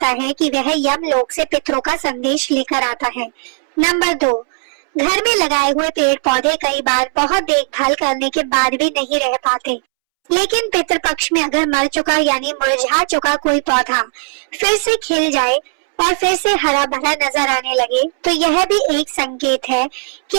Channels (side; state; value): left; silent; 69 dB below the other